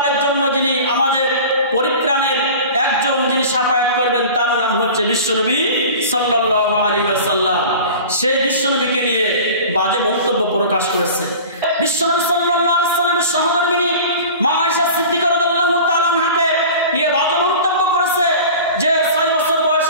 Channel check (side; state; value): both; inverted; correlation -0.38